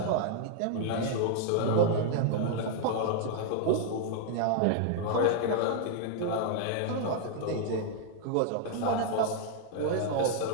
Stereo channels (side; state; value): both; different; correlation 0.00